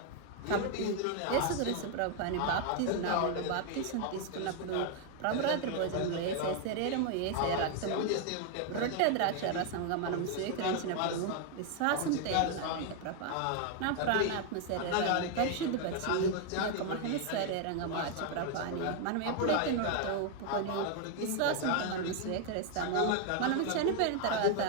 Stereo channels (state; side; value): different; both; correlation 0.00